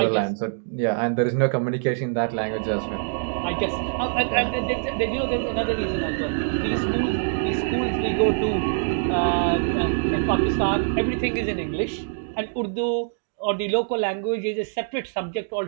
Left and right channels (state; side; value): silent; left; digital silence